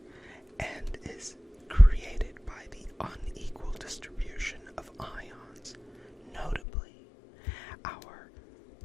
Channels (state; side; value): drops out; right; at 6.6 s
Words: and is created by the unequal distribution of ions, notably our